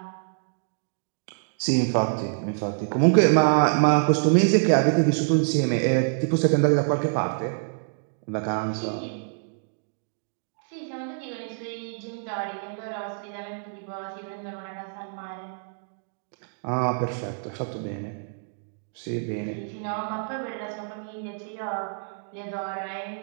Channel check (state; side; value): silent; left; digital silence